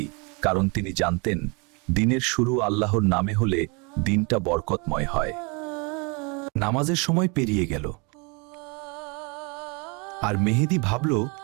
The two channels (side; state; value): left; quieter; 31.6 dB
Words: কারণ তিনি জানতেন দিনের শুরু আল্লাহর নামে হলে দিনটা বরকতময় হয়। নামাজের সময় পেরিয়ে গেল, আর মেহেদী ভাবল,